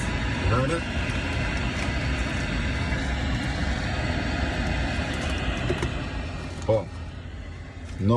You heard it? Boom.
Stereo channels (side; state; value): both; identical; correlation 1.00